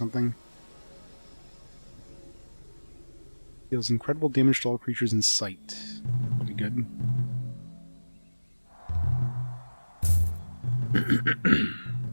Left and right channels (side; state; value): both; inverted; correlation -1.00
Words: Deals incredible damage to all creatures in sight. That'll be good.